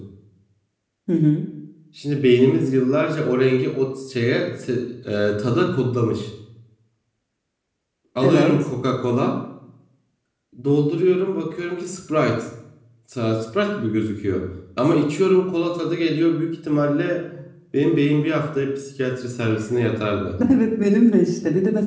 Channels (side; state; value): both; identical; correlation 1.00